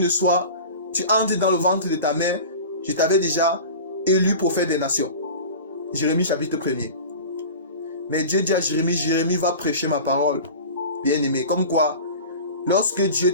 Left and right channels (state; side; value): inverted; both; correlation -0.35